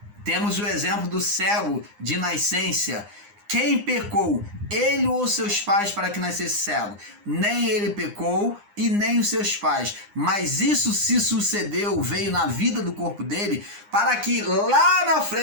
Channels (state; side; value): late; left; 9.8 ms